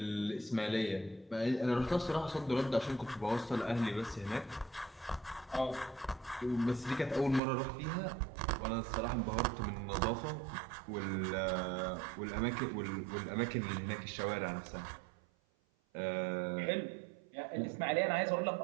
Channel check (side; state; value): left; drops out; at 7.4 s